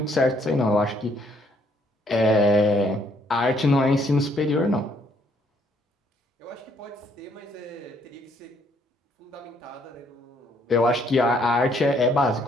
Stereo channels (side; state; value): both; normal; correlation 0.67